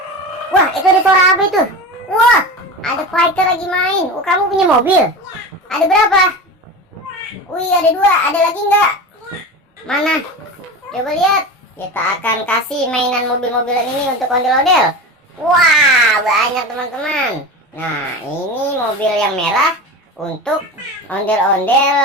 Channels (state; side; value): normal; both; correlation 0.28